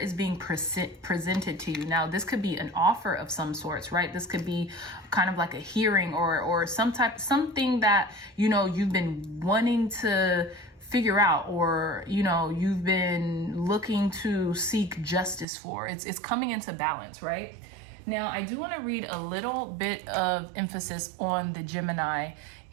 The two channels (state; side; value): drops out; left; at 15.5 s